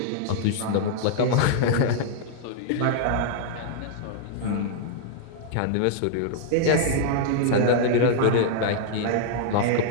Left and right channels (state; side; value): different; both; correlation -0.01